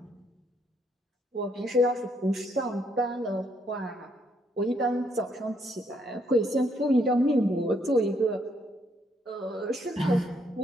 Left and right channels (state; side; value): normal; both; correlation 0.72